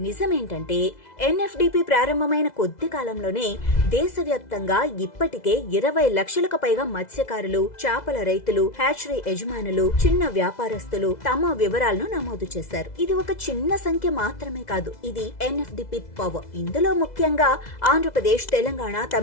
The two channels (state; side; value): late; right; 2.0 ms